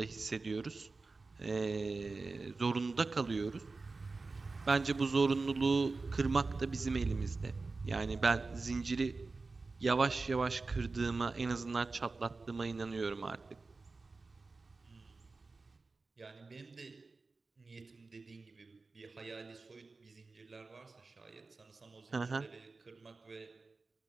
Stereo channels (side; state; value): left; quieter; 3.8 dB